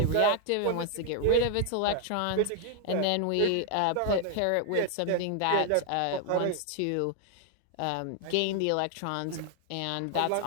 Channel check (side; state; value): both; different; correlation 0.00